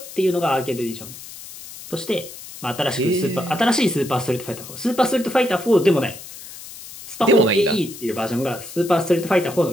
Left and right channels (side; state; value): left; noise; hiss, 14 dB below the sound